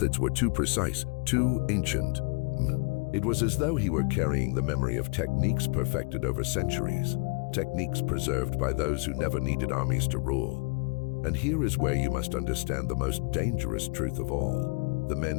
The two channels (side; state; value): right; quieter; 33.2 dB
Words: were too precise, too ancient. It was as though he were carrying the memory of techniques perfected over centuries, techniques preserved by those who never needed armies to rule. And here is where you must understand the most dangerous truth of all. The men